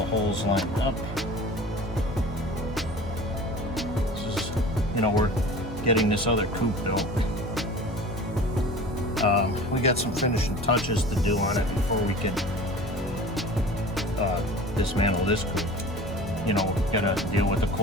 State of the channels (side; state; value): both; normal; correlation 0.39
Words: holes lined up. This is, you know, we're getting this other coop built. We got some finishing touches to do on it before we can dismantle this coop. You know, gotta deal with the